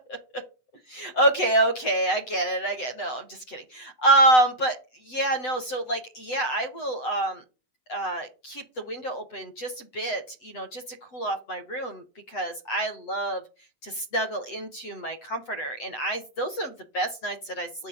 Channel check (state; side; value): late; right; 7.9 ms